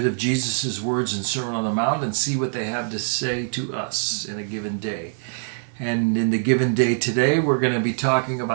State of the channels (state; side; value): silent; left; digital silence